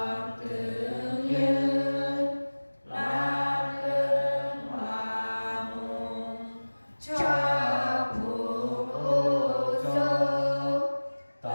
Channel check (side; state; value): both; inverted; correlation -1.00